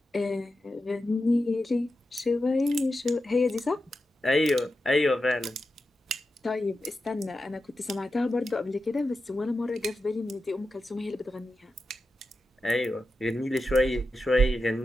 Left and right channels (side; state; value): both; normal; correlation 0.90